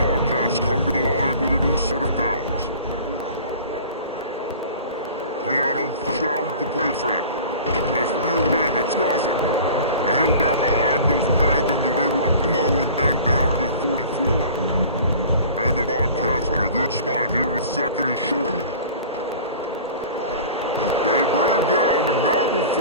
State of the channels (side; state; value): both; inverted; correlation -0.42